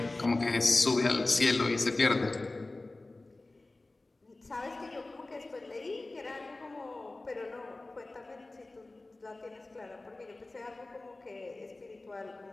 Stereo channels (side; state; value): right; quieter; 3.0 dB